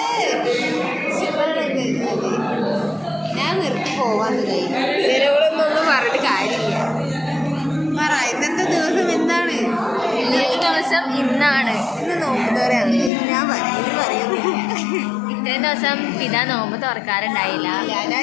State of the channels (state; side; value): drops out; right; at 13.1 s